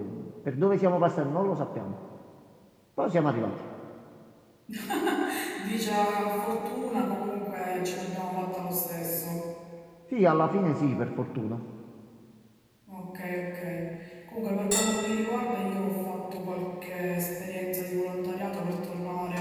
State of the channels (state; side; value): identical; both; correlation 1.00